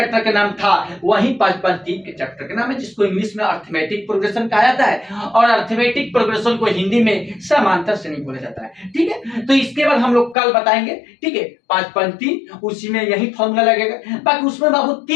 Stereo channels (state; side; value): drops out; right; at 10.4 s